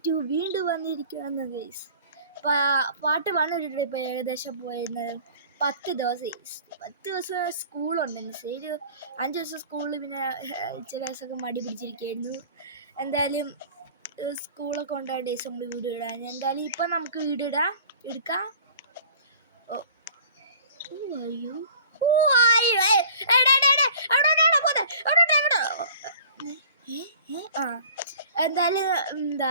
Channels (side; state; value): both; inverted; correlation -0.47